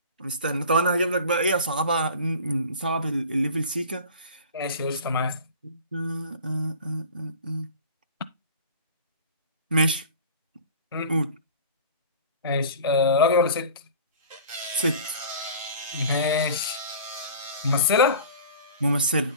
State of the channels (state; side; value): inverted; both; correlation -0.40